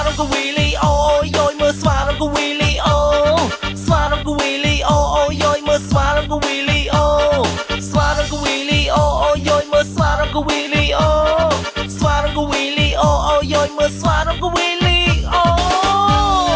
រងកវីលីអូយយមើលស្វារងកវីលីអូស្វារងកវីលីអូយយមើលស្វារងកវីលីអូស្វារងកវីលីអូយយមើលស្វារងកវីលីអូស្វារងកវីលីអូយយមើលស្វារងកវីលីអូ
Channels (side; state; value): both; identical; correlation 1.00